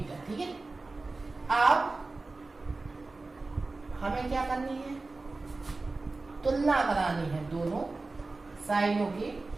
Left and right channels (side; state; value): left; quieter; 3.5 dB